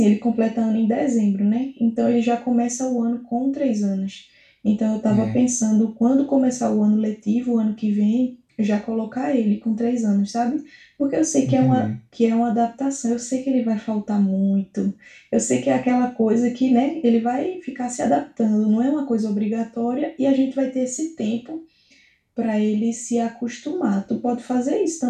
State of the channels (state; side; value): identical; both; correlation 1.00